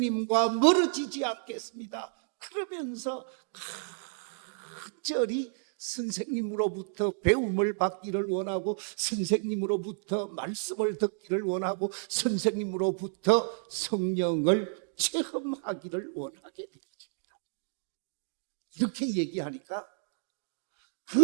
멀어지지 않겠습니다. 그러면서 간절히 선생님으로부터 배움을 받기를 원하고 선생님으로부터 말씀을 듣기를 원하고 선생님으로부터 성령을 체험하기를 원하게 되었습니다. 이렇게 얘기하니까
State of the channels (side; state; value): left; silent; digital silence